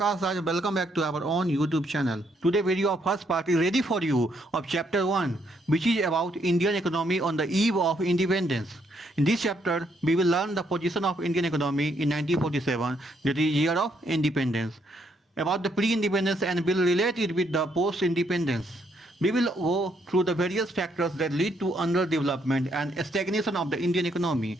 Raj. Welcome back to our own YouTube channel. Today video of first part is ready for you of chapter 1, which is about Indian economy on the eve of independence. In this chapter, we will learn the position of Indian economy in 1947, that is year of independence, about the pre-independence and will relate it with the post-independence. We will go through the various factors that lead to underdevelopment and stagnation of the Indian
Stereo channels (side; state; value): both; normal; correlation 0.73